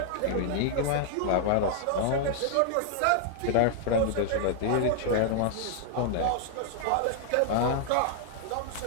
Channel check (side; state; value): both; different; correlation -0.01